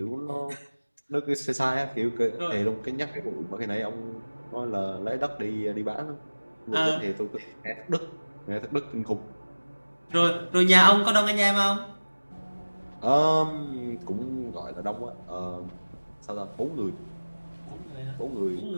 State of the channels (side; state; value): both; inverted; correlation -1.00